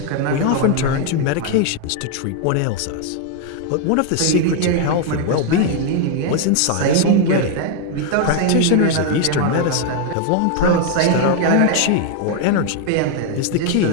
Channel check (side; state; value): both; different; correlation 0.00